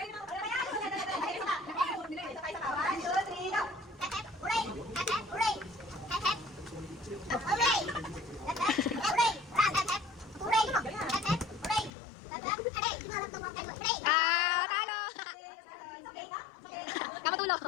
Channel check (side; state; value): right; drops out; at 11.9 s